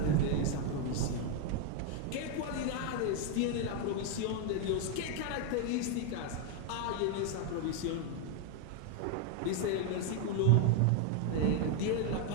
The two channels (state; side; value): different; both; correlation 0.01